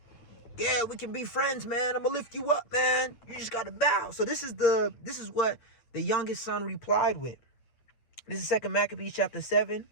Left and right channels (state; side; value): late; right; 9.0 ms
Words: Yeah, we can be friends, man. I'm gonna lift you up, man. You just gotta bow. So this is what the youngest son replied with. This is 2 Maccabees chapter 7